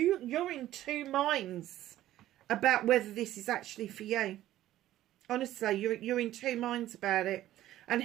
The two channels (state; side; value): quieter; left; 13.8 dB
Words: in 2 minds about whether this is actually for you. Honestly, you're in 2 minds about it. And